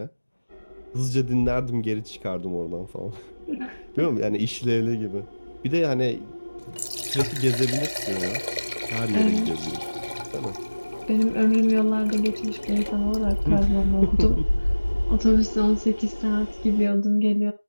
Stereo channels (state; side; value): inverted; both; correlation -1.00